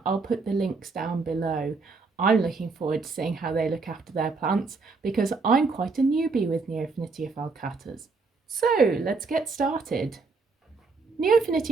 I'll put the links down below. I'm looking forward to seeing how they look after their plants because I'm quite a newbie with Neofinitia falcatas. So let's get started.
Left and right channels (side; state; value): left; quieter; 4.2 dB